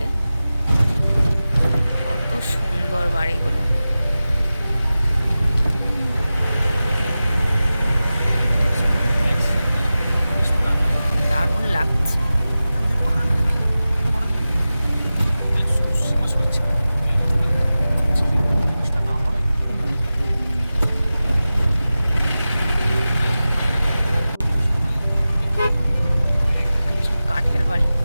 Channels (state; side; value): inverted; both; correlation -0.95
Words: কত সুন্দর বাড়িগুলো। দারুণ লাগছে। কাঠের বাড়ি।